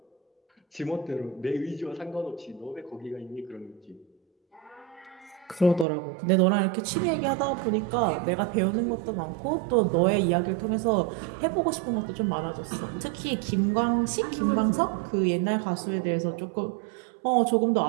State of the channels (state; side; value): drops out; left; at 5.9 s